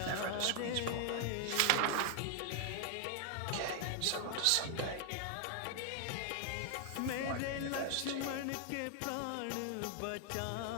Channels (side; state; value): both; different; correlation 0.00